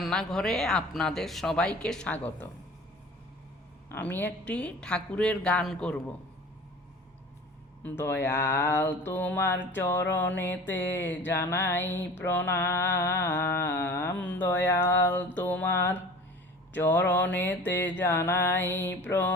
আপনাদের সবাইকে স্বাগত। আমি একটি ঠাকুরের গান করব। দয়াল তোমার চরণেতে জানাই প্রণাম, দয়াল তোমার চরণেতে জানাই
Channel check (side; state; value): both; normal; correlation 0.42